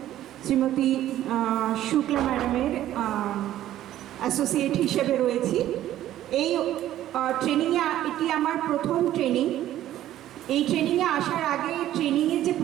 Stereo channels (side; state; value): left; quieter; 13.0 dB